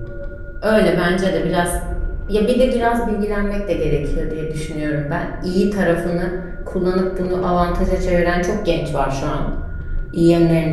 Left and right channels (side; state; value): both; identical; correlation 1.00